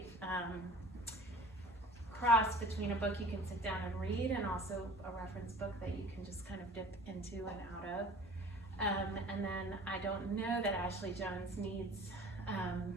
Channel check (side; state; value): both; normal; correlation 0.45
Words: cross between a book you can sit down and read and also a reference book that you can just kind of dip into and out of. And then I don't know that Ashley Jones needs